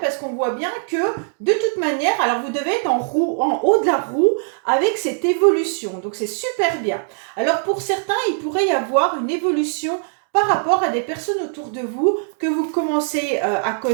parce qu'on voit bien que, de toute manière, alors vous devez être en haut de la roue avec cette évolution. Donc, c'est super bien. Alors, pour certains, il pourrait y avoir une évolution par rapport à des personnes autour de vous que vous commencez à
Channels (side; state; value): left; silent; 65 dB below the other